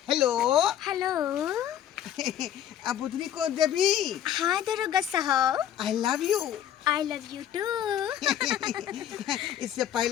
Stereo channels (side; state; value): right; quieter; 10.6 dB